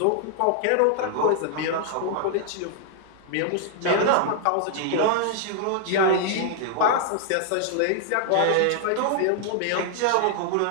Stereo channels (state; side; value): different; both; correlation -0.01